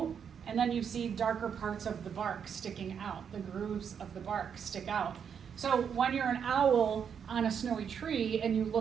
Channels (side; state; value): left; quieter; 7.5 dB